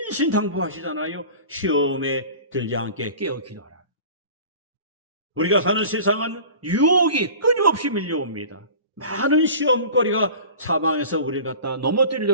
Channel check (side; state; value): both; inverted; correlation -0.40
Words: 시험에 들지 않게 깨어 기도하라. 우리가 사는 세상은 유혹이 끊임없이 밀려옵니다. 많은 시험거리가 사방에서 우리를 갖다